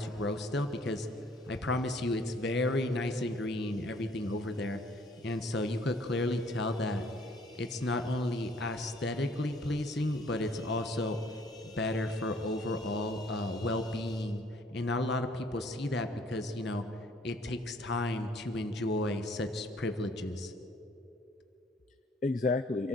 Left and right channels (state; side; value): normal; both; correlation 0.60